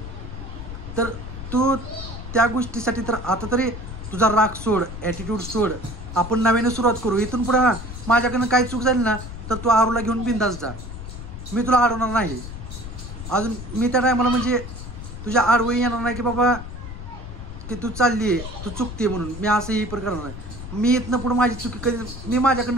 तर तू त्या गोष्टीसाठी तर आता तरी तुझा राग सोड, ॲटिट्यूड सोड. आपण नव्याने सुरुवात करू. इथून पुढे माझ्याकडनं काही चूक झाली ना तर तू आरूला घेऊन बिंदास जा. मी तुला अडवणार नाही. अजून मी त्या टायमाला म्हणजे तुझ्या आडवही येणार नाही की बाबा की तू चालली आहे, तू चुकते म्हणून. मी असंही पण करणार नाही. मी इथनं पुढे माझी चुकी कधी, मी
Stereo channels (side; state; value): left; noise; rumble, 10 dB below the sound